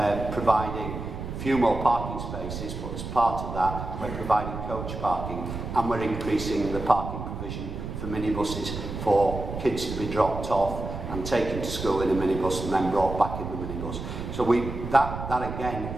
providing a few more parking spaces, but as part of that, we're providing coach parking, and we're increasing the parking provision for minibuses for kids to be dropped off and taken to school in a minibus and then brought back in the minibus. So that again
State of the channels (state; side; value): noise; right; rumble, 7 dB below the sound